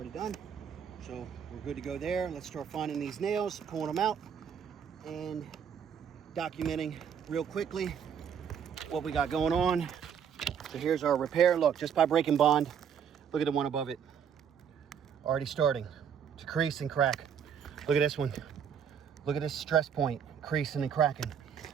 done. So we're good to go there. Let's start finding these nails, pulling them out, and documenting real quickly what we got going on. So here's our repair. Look, just by breaking bond, look at the one above it. Already starting to crease and crack. Look at this one. Look at this stress point, creasing and cracking.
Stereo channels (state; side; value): quieter; left; 7.8 dB